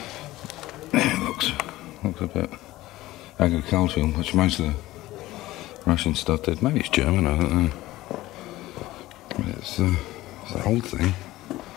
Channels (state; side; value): quieter; right; 17.1 dB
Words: Yeah, it looks a bit agricultural, which most of the Russian stuff did. Maybe it's German, I don't know. But it's an old thing.